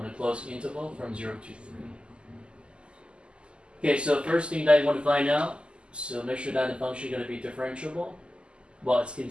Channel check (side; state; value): left; late; 0.051 ms